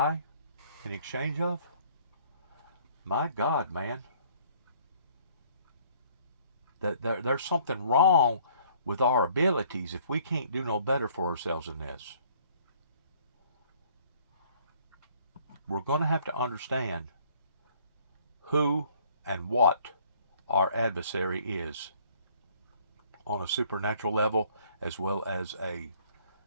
in exchange of? My God, man. That there's something wrong with our abilities if we can't do no better for ourselves in this. We're going to have to understand who and what our adversary is on a supernatural level as well as a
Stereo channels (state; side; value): inverted; both; correlation -0.59